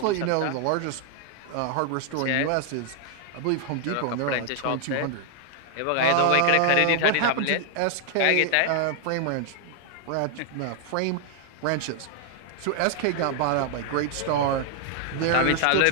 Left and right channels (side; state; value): both; different; correlation 0.00